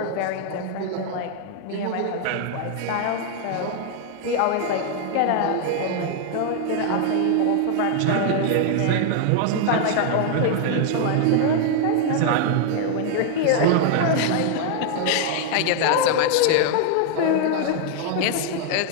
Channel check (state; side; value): different; both; correlation 0.00